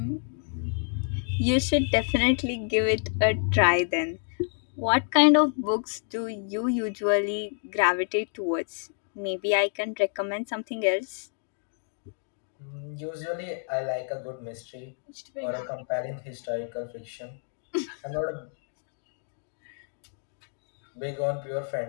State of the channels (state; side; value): silent; right; 59 dB below the other